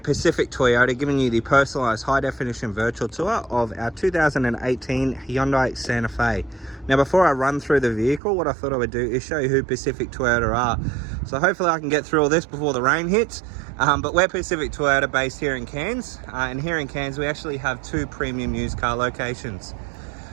Pacific Toyota, giving you the personalised high-definition virtual tour of our 2018 Hyundai Santa Fe. Now before I run through the vehicle, what I thought I would do is show you who Pacific Toyota are. So hopefully I can get through all this before the rain hits. But we're Pacific Toyota based here in Cairns. And here in Cairns we actually have 2 premium used car locations.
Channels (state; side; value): drops out; left; at 8.2 s